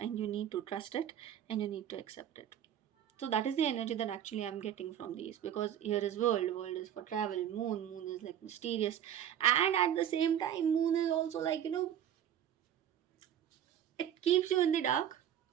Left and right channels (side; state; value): left; quieter; 10.1 dB